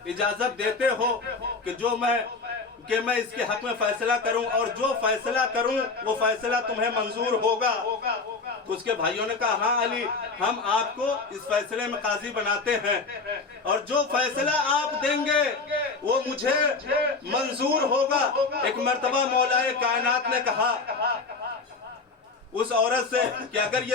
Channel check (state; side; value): quieter; right; 4.2 dB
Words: اجازت دیتے ہو کہ میں اس کے حق میں فیصلہ کروں، اور جو فیصلہ کروں وہ فیصلہ تمہیں منظور ہوگا؟ تو اس کے بھائیوں نے کہا ہاں علی، ہم آپ کو اس فیصلے میں قاضی بناتے ہیں اور جو فیصلہ آپ دیں گے وہ مجھے منظور ہوگا۔ ایک مرتبہ مولا کائنات نے کہا اس عورت سے کہ اگر